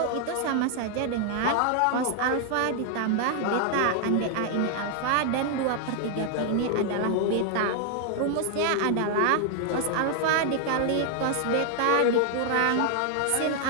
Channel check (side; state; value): both; different; correlation 0.00